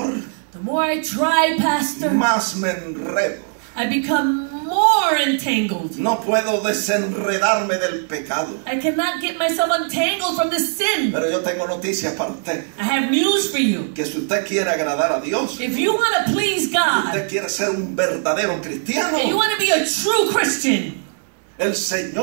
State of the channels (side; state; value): left; silent; 66 dB below the other